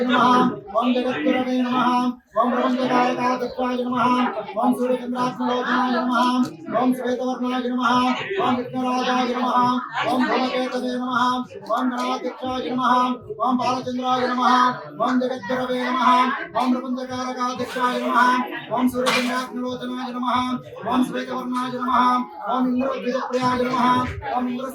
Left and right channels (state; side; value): identical; both; correlation 1.00